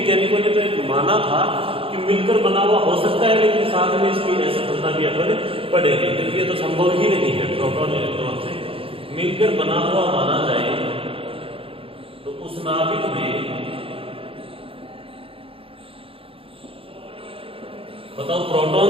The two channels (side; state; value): left; late; 0.27 ms